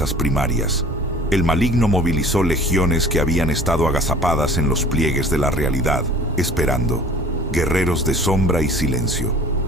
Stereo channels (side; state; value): both; normal; correlation 0.47